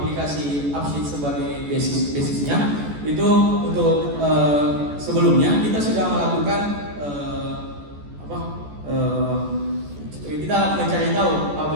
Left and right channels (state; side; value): late; left; 14 ms